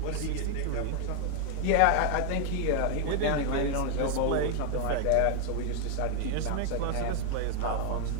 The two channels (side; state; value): both; different; correlation 0.00